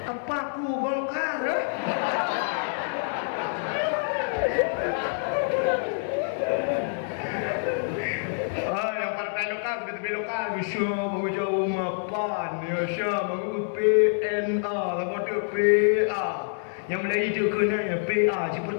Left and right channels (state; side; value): silent; right; digital silence